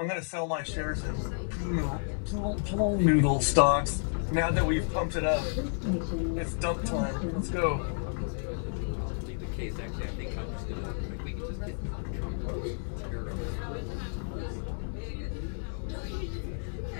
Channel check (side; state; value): right; silent; digital silence